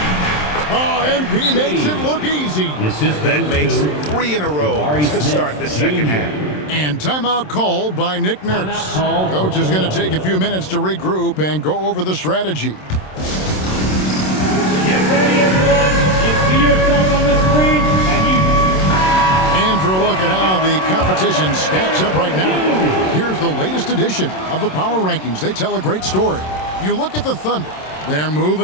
Oh, MP makes it look easy. That makes 3 in a row to start the second half. And timeout called by Nick Nurse. Coach is going to take a few minutes to regroup and go over the strategy. Get ready, everyone. You see yourself on the screen, And for a look at how the competition stacks up right now, here's the latest edition of the Power Rankings. They tell a great story. You look at the Thunder. They're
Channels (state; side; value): late; right; 27 ms